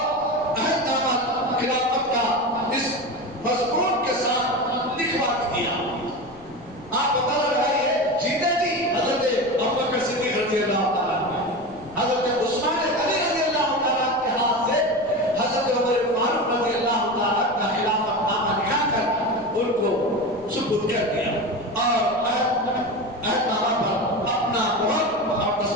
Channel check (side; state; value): left; noise; rumble, 24 dB below the sound